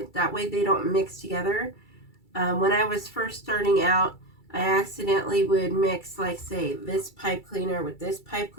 That way they don't mix together. When I was first starting out, I accidentally would mix, like, say, this pipe cleaner with this pipe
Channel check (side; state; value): right; late; 2.3 ms